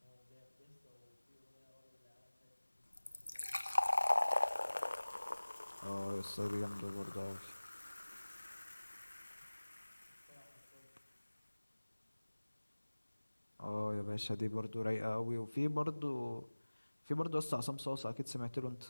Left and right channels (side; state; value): both; inverted; correlation -1.00